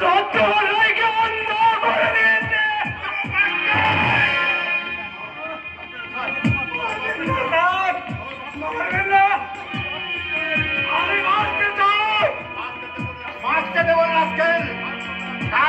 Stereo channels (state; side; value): identical; both; correlation 1.00